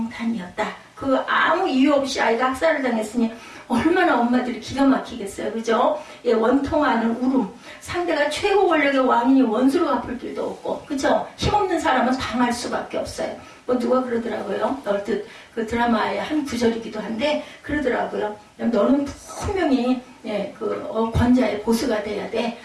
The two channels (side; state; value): both; identical; correlation 1.00